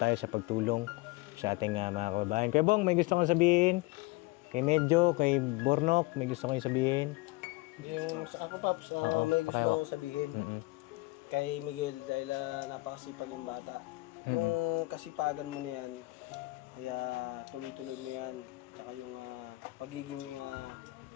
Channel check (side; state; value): right; quieter; 22.5 dB